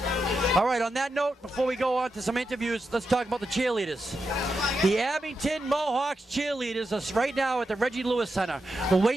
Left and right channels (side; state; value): both; normal; correlation 0.87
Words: All right, on that note, before we go on to some interviews, let's talk about the cheerleaders. The Abington Mohawks cheerleaders are right now at the Reggie Lewis Center. We're